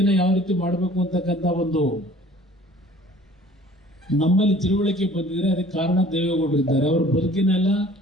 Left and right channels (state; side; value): normal; both; correlation 0.51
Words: ಯಾವ ರೀತಿ ಮಾಡಬೇಕು ಅಂತಕ್ಕಂಥ ಒಂದು ನಮ್ಮಲ್ಲಿ ತಿಳುವಳಿಕೆ ಬಂದಿದ್ರೆ ಅದಕ್ಕೆ ಕಾರಣ ದೇವೇಗೌಡರಿದ್ದಾರೆ. ಅವರ ಬದುಕಿನೆಲ್ಲ